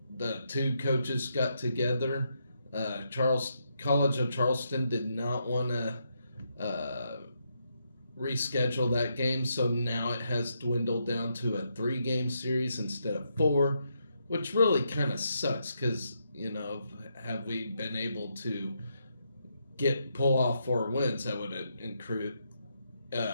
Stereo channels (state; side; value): inverted; both; correlation -0.80